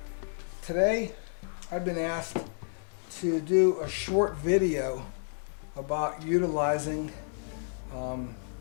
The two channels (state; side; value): silent; right; digital silence